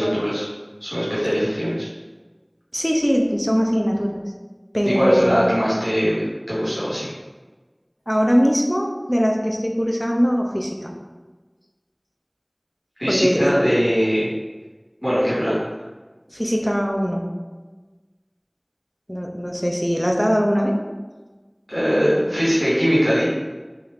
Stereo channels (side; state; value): both; identical; correlation 1.00